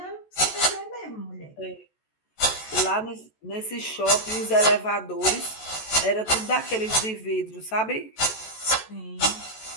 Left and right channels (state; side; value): late; right; 14 ms